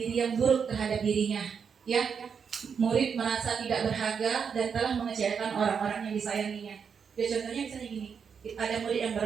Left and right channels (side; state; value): left; quieter; 6.6 dB